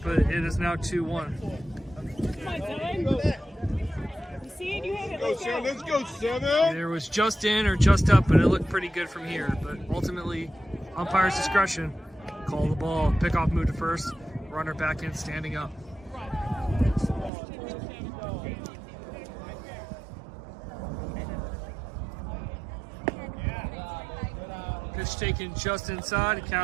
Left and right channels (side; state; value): left; drops out; at 17.3 s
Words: it is now 2-1. Come on, Severn. You see it? You have it. Let's go. Let's go, Severn. There was just in or just up, but it looked pretty good from here. But ultimately, umpire's discretion. Call the ball, pick off, move to first, runner back in, standing up. Pitch taken just inside.